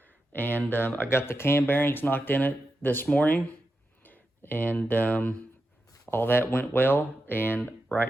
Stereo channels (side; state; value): both; normal; correlation 0.89